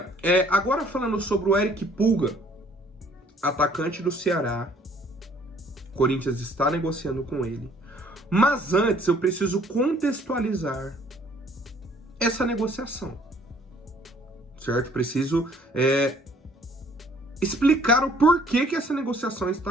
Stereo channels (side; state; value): both; normal; correlation 0.60